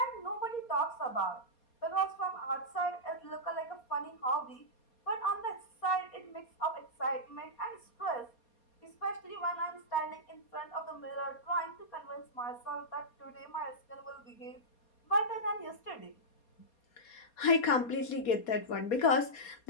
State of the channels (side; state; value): right; late; 4.2 ms